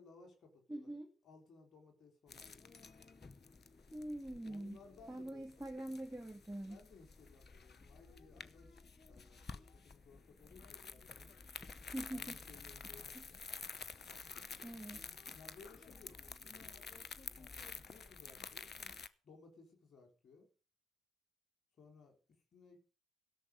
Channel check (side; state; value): both; normal; correlation 0.84